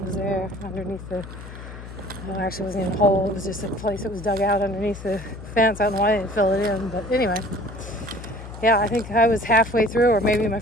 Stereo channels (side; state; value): left; noise; hum, 13 dB below the sound